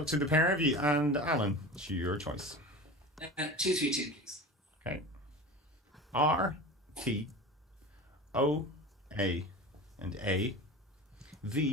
to the pair of you. And Alan, it's your choice. 232, please. Okay. R, T, O, A, and A,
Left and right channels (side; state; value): both; normal; correlation 0.32